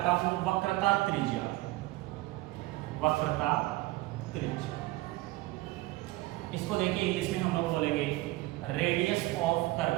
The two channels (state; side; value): quieter; left; 19.4 dB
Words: हूं, वक्रता त्रिज्या। वक्रता त्रिज्या, इसको देखिए इंग्लिश में हम लोग बोलेंगे radius of